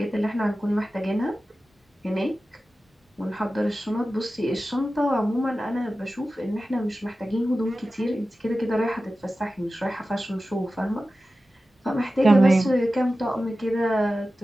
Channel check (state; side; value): normal; both; correlation 0.94